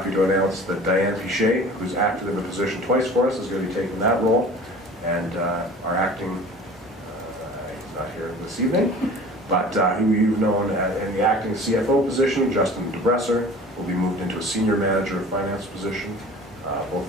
to announce that Diane Pichet, who's acted in the position twice for us, is going to be taking that role, and our acting, he's not here this evening, but who you've known in the acting CFO position, Justin DeBresser, will be moved into a Senior Manager of Finance position. Both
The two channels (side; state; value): both; normal; correlation 0.43